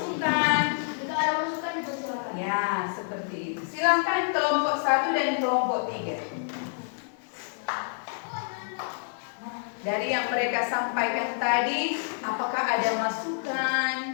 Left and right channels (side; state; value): right; silent; digital silence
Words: Jika ada masukan dipersilakan. Ya, seperti itu. Silakan kelompok 1 dan kelompok 3. Dari yang mereka sampaikan tadi, apakah ada masukan,